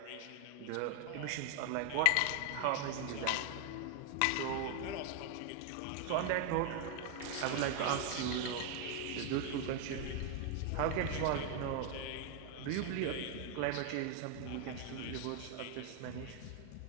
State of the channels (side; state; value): both; different; correlation 0.00